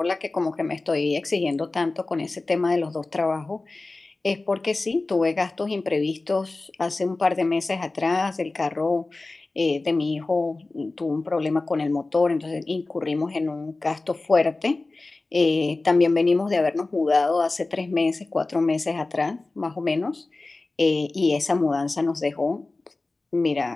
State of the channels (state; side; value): quieter; right; 3.3 dB